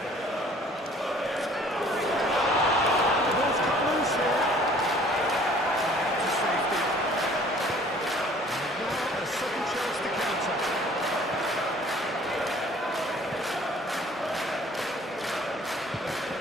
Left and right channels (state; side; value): normal; both; correlation 0.54